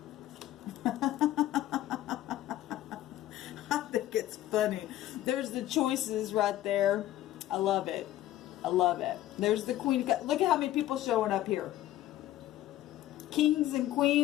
I think it's funny. There's the choices right there. I love it. I love it. There's the Queen. Look at how many people showing up here. Kings and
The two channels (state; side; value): quieter; right; 14.0 dB